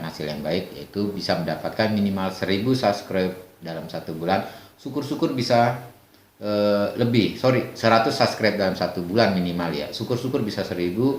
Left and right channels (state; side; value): identical; both; correlation 1.00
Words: hasil yang baik, yaitu bisa mendapatkan minimal 1000 subscribe dalam 1 bulan. Syukur-syukur bisa 100 subscribe dalam 1 bulan minimal ya. Syukur-syukur bisa 1000,